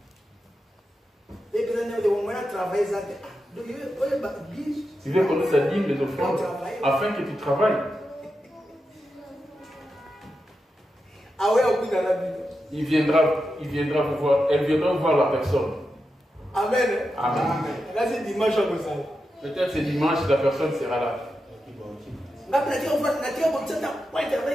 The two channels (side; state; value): both; normal; correlation 0.89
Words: Tu veux connaître sa dîme, les offrandes, afin que tu travailles. Il viendra vous voir, elle viendra voir la personne. Amen. Amen. Là, c'est dimanche. Peut-être c'est dimanche, la personne sera là.